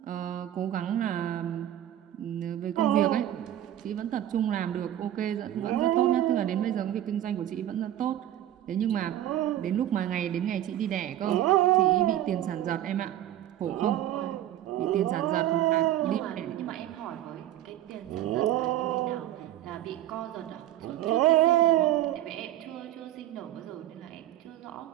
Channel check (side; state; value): left; quieter; 12.6 dB